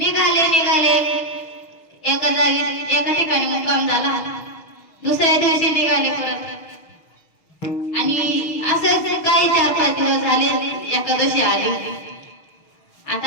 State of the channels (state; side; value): late; right; 6.4 ms